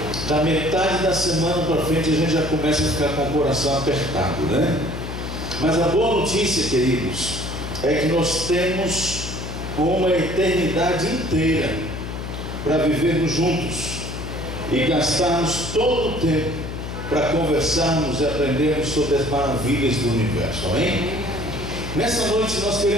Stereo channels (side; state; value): left; noise; hum, 7 dB below the sound